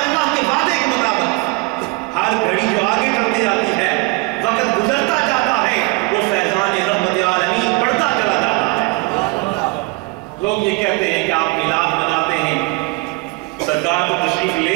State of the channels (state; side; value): quieter; left; 25.7 dB